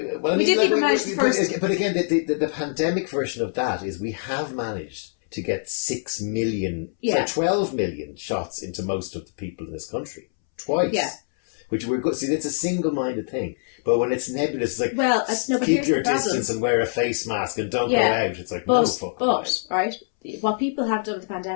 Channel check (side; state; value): right; silent; 62 dB below the other